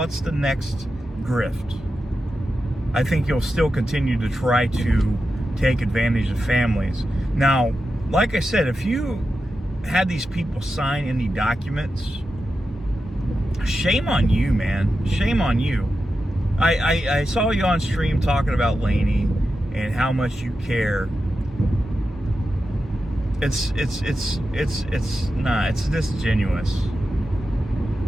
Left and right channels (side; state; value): both; normal; correlation 0.90